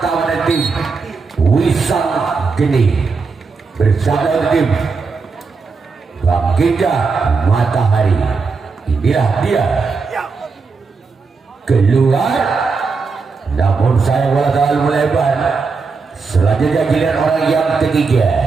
dari tim Wisang Geni bersama tim Bangkitnya Matahari. Inilah dia keluar, namun saya bola terlalu melebar. Selanjutnya giliran orang yang ketiga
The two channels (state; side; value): quieter; left; 4.7 dB